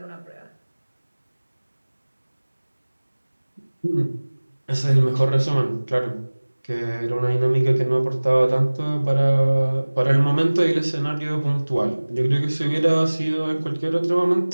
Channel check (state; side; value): inverted; both; correlation -1.00